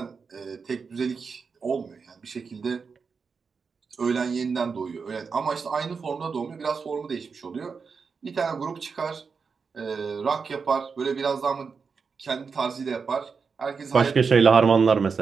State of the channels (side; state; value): left; quieter; 5.3 dB